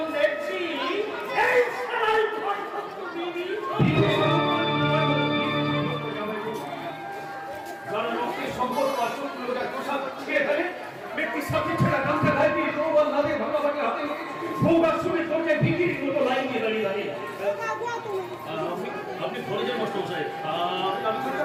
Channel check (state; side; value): identical; both; correlation 1.00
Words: দেখছি এই সারাই ঘর সত্য বিবি যারা রক্তের সম্পর্ক আর শত্রুতার পোশাক ছিঁড়ে ফেলে, ব্যক্তির সাথে ছেঁড়া গামছা গায়ে দিয়ে তরোয়াল হাতে ভাগাভাগি হাতে সৌগাত শুনে চলছে বিক্রির মতো লাইন দিয়ে দাঁড়িয়ে দাঁড়িয়ে। আপনি ঘরে যান মাস্টার সাহেব,